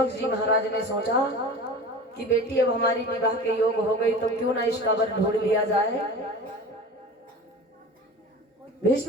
जी महाराज ने सोचा कि बेटी अब हमारी विवाह के योग हो गई, तो क्यों ना इसका वर ढूंढ लिया जाए।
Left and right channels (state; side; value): normal; both; correlation 0.35